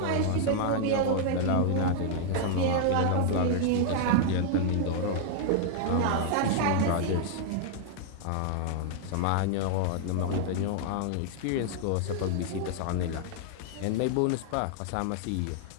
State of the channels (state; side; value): different; both; correlation -0.01